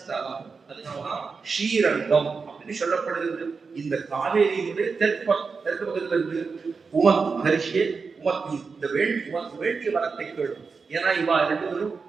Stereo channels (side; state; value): left; quieter; 4.9 dB